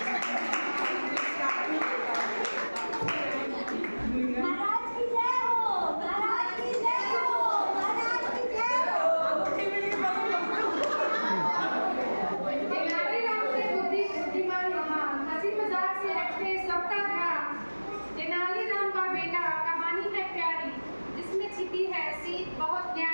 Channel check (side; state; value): both; inverted; correlation -1.00